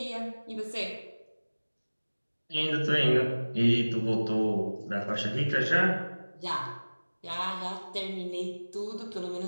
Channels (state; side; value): inverted; both; correlation -1.00